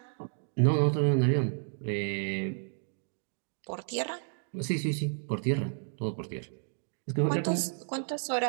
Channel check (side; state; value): left; silent; digital silence